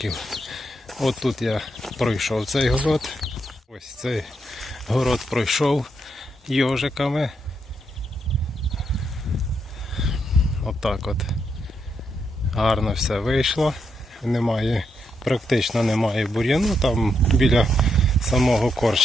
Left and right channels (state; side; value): normal; both; correlation 0.80